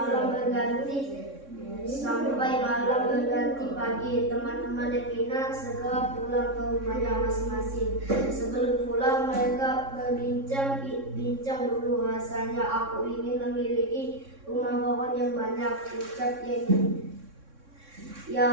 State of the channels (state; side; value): late; left; 3.6 ms